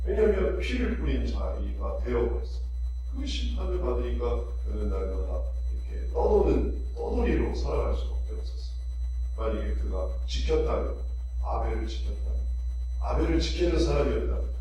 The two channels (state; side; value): identical; both; correlation 1.00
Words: 왜냐하면 피를 뿌린 자리가 되어버렸어. 그 심판을 받으니까 그는 날마다 이렇게 떠돌이로 살아갈 수밖에 없었어. 만약에 그가 지켰다면, 아벨을 지키는 사람이었다면,